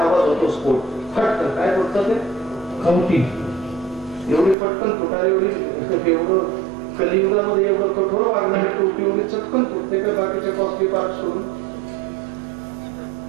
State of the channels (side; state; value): left; drops out; at 4.5 s